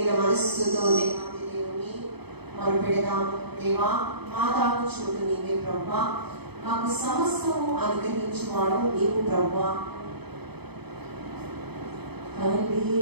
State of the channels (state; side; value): late; left; 0.98 ms